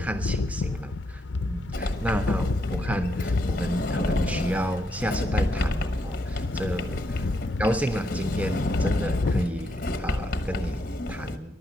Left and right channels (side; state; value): both; normal; correlation 0.78